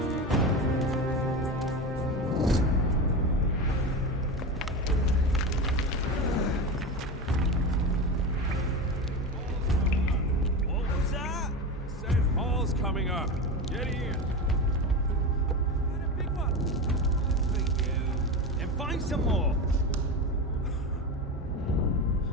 What was that? Said Hall's coming up. Get in. Got a big one. For you. Then find some more.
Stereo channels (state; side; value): normal; both; correlation 0.23